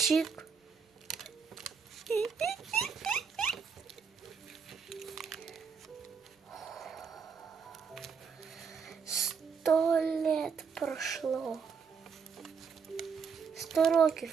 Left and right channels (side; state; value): left; quieter; 6.0 dB